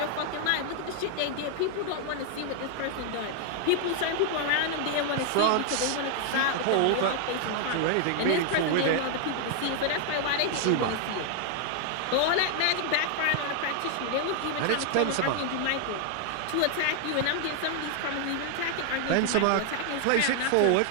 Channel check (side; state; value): both; different; correlation 0.00